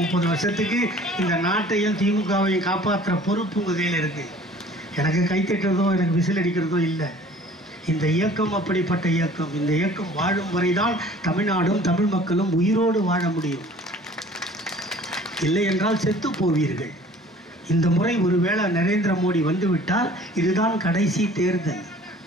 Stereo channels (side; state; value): both; normal; correlation 0.50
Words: வருஷத்துக்கு இந்த நாட்டையும் திமுகவையும் காப்பாற்றுற பொறுப்பு உங்கள் கையில் இருக்குது. எனக்கு கைத்தட்டுறதோ எனக்கு விசில் அடிக்கிறதோ இல்லை. இந்த இயக்கம் அப்படிப்பட்ட இயக்கம். இந்த இயக்கம் வாழும் வரைதான் தமிழ்நாடும் தமிழ் மக்களும் உயிரோடு வாழ முடியும். இல்லை என்றால் செத்து போவீர்கள். இந்த முறை ஒருவேளை நரேந்திர மோடி வந்துவிட்டால் இதுதான் கடைசி தேர்தல்.